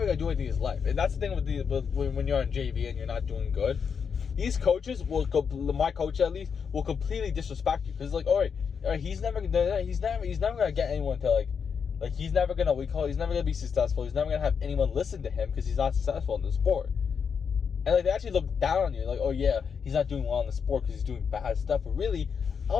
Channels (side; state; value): right; quieter; 6.5 dB